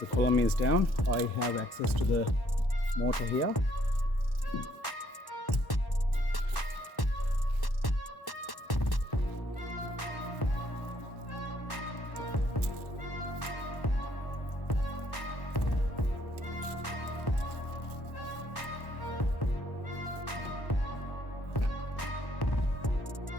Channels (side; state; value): right; late; 1.1 ms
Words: the column is down. I have access to the motor here.